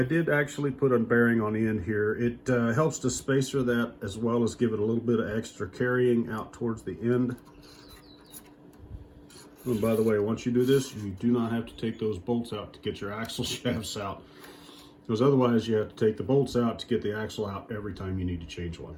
did actually put a bearing on the end here. It helps to spacer that, as well as give it a little bit of extra carrying out towards the end. And by the way, once you do this, you do not have to take those bolts out to get your axle shafts out, because otherwise you have to take the bolts out to get the axle out every time you need to change one.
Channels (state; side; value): identical; both; correlation 1.00